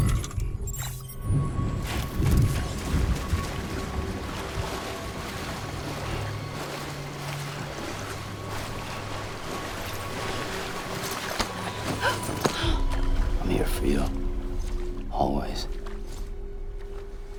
I'm here for you. Always.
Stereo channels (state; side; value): identical; both; correlation 1.00